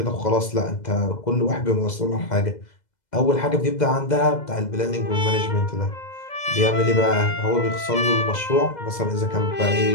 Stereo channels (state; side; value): late; right; 2.0 ms